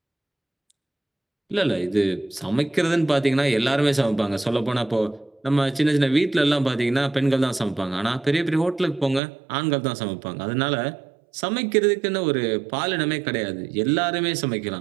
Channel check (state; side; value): drops out; left; at 9.2 s